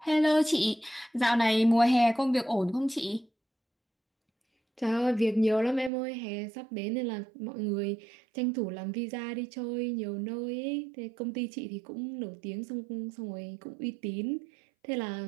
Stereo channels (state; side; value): drops out; left; at 5.9 s